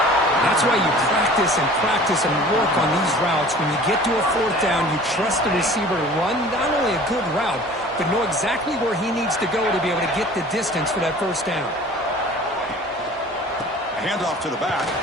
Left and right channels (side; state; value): both; normal; correlation 0.46